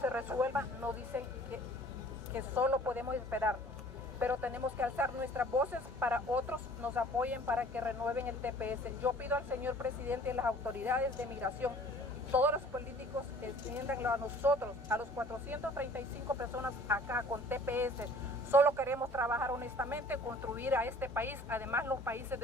resuelva, nos dicen que solo podemos esperar. Pero tenemos que alzar nuestras voces para otros nos apoyen para que renueven el TPS. Yo pido al señor presidente y las autoridades de migración, todos los políticos, extiéndanlo a nosotros, a los 435 personas acá con TPS. Solo queremos trabajar honestamente, contribuir a este país. Además, los países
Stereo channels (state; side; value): normal; both; correlation 0.51